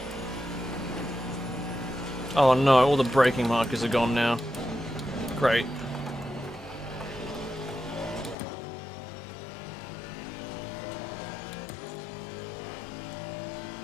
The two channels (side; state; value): right; drops out; at 8.3 s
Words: Oh no, all the braking markers are gone now. Great.